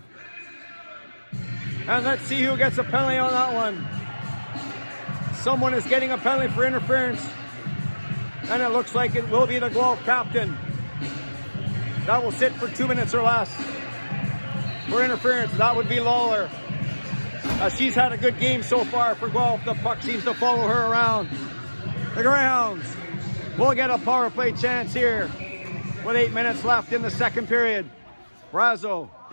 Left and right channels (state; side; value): inverted; both; correlation -1.00